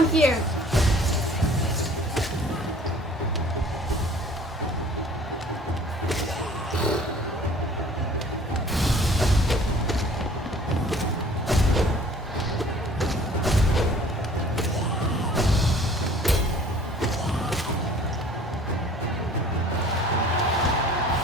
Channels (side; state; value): both; normal; correlation 0.51